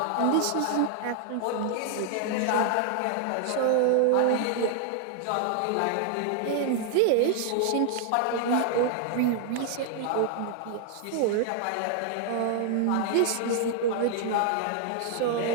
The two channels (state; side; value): different; both; correlation 0.00